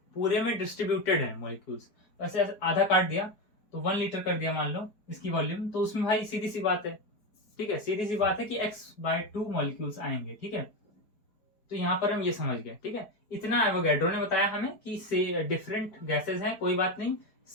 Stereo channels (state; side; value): late; right; 4.6 ms